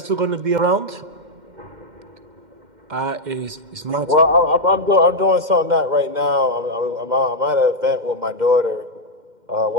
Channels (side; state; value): left; late; 2.1 ms